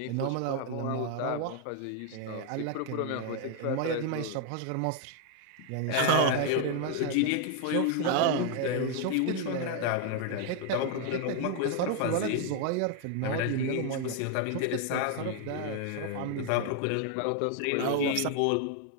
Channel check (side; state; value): both; different; correlation 0.01